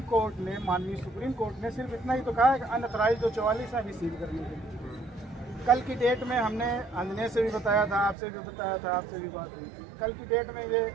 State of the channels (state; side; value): drops out; left; at 8.2 s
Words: कोर्ट ने, माननीय सुप्रीम कोर्ट ने सिर्फ इतना ही तो कहा है कि अनऑथराइज्ड जो 44 है अभी सील करने के लिए। कल की डेट में हमने अंजने से भी बताया था, आपसे भी बताया था, आपसे भी बात हुई। कल की डेट में ये